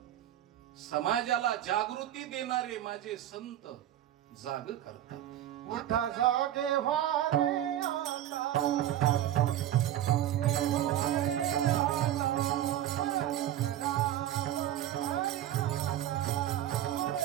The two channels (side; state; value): left; quieter; 12.2 dB